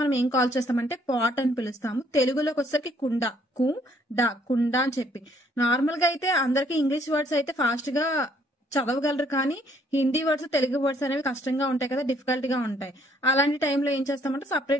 ఏం కాల్ చేస్తామంటే పాట్ అని పిలుస్తాము. తెలుగులోకి వచ్చేసరికి కుండ, కుండ అని చెప్పి. నార్మల్ గా అయితే అందరికి ఇంగ్లీష్ వర్డ్స్ అయితే ఫాస్ట్ గా చదవగలరు, కానీ హిందీ వర్డ్స్ తెలుగు వర్డ్స్ అనేవి కష్టంగా ఉంటాయి కదా, డిఫికల్ట్ గా ఉంటాయి. అలాంటి టైంలో ఏం చేస్తామంటే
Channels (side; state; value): both; normal; correlation 0.65